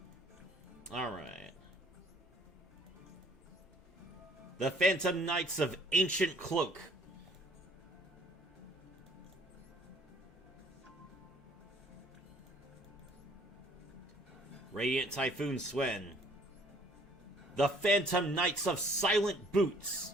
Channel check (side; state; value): both; normal; correlation 0.59